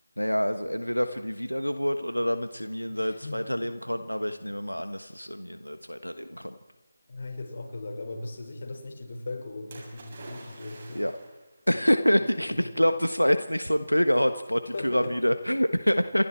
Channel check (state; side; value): inverted; both; correlation -0.99